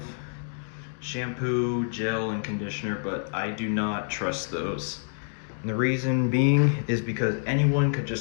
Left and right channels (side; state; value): right; silent; digital silence